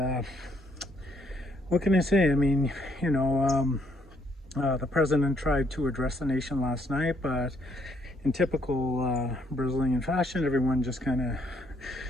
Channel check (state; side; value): normal; both; correlation 0.69